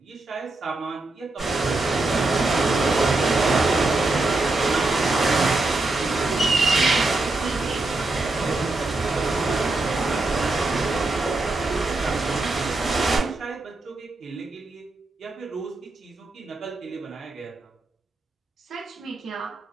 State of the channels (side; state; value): left; quieter; 3.1 dB